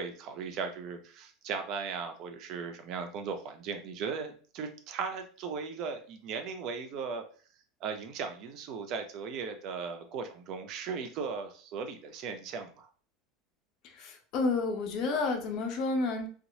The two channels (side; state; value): both; normal; correlation 0.31